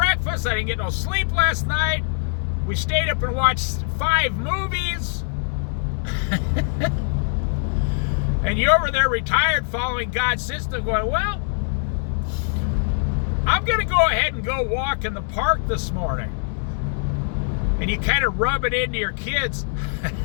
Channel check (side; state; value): right; silent; 64 dB below the other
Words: I didn't get no sleep last night. We stayed up and watched 5 movies. And you're over there retired following God's system going, well, I'm going to go ahead and go walk in the park this morning. And you kind of rub it into your kids.